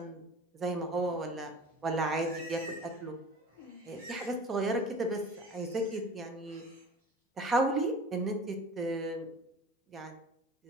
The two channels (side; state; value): both; normal; correlation 0.41